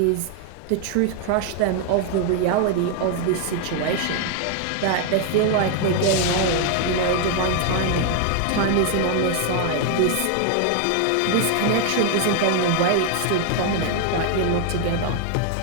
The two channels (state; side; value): different; both; correlation 0.00